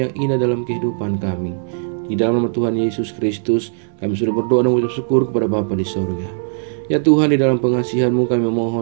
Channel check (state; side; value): silent; left; 67 dB below the other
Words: indah dalam kehidupan kami. Di dalam nama Tuhan Yesus Kristus, kami sudah berdoa dan mengucap syukur kepada Bapa di sorga. Ya Tuhan, di dalam pengasihan-Mu kami